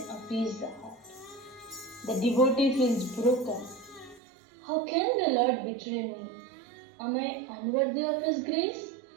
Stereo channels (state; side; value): drops out; left; at 4.2 s